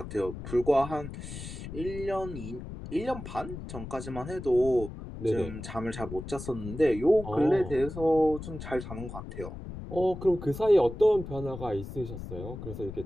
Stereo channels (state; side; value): noise; left; rumble, 10 dB below the sound